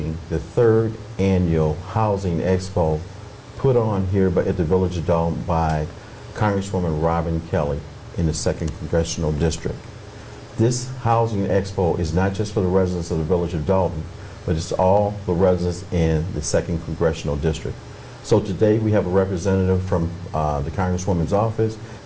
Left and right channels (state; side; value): identical; both; correlation 1.00